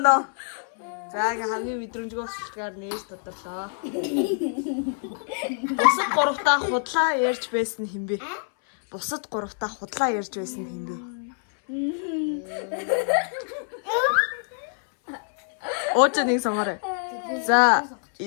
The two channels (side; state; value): right; silent; 61 dB below the other